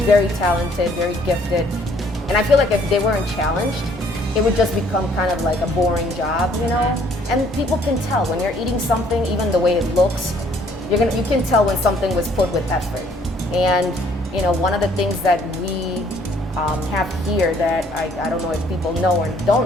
very talented, very gifted. And I feel like if they weren't challenged, it would just become kind of like a boring job, you know? And people can tell when you're eating something, even the way it looks, you can tell when something was put with effort. And, you know, one of the things that we have here that I don't know if people know or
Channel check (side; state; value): both; normal; correlation 0.62